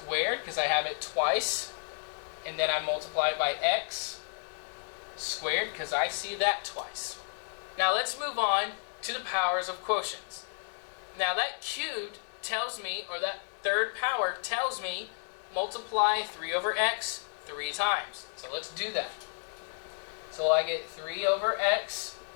because I have it twice, and then I multiply it by x squared because I see that twice. Now let's move on to the powers of quotients. Now that cubed tells me, or that third power tells me, multiply 3 over x 3 times. So let's do that. So I get 3 over x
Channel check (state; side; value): silent; right; digital silence